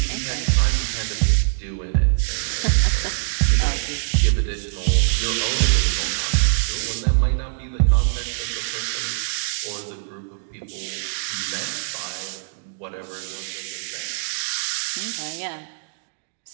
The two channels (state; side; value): silent; left; digital silence